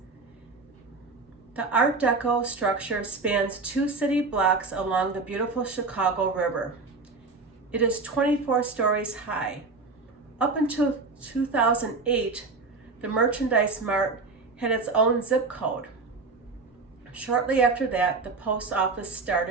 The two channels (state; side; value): quieter; left; 4.0 dB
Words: The Art Deco structure spans 2 city blocks along the beautiful Chicago River. It is 24 stories high. Up until 2008, the Merchandise Mart had its own zip code. Shortly after that, the post office